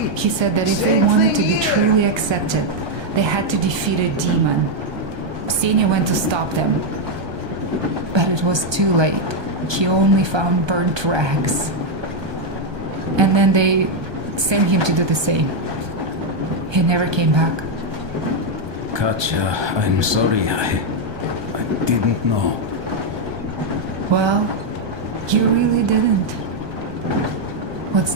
He said that if they wanted to be truly accepted, they had to defeat a demon. Ksenia went to stop them. But it was too late. He only found burnt rags. And then they sent him to do the same. He never came back. Katja, I'm sorry. I didn't know. Well, you really didn't. What's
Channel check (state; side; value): late; left; 1.2 ms